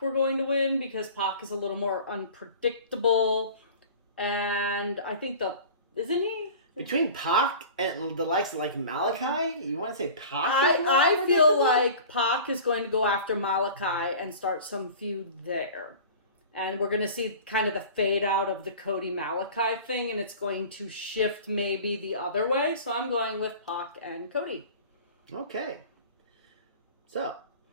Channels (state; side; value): inverted; both; correlation -0.40